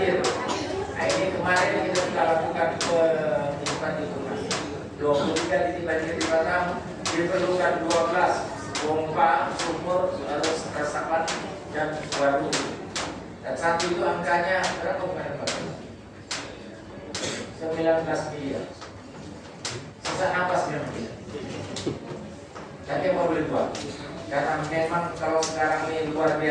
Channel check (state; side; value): identical; both; correlation 1.00